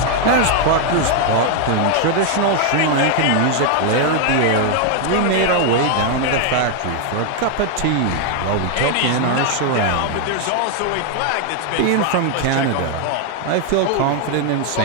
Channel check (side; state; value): both; different; correlation 0.00